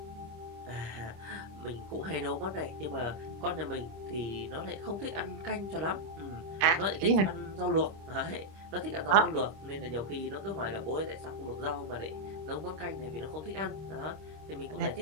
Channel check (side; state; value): left; late; 26 ms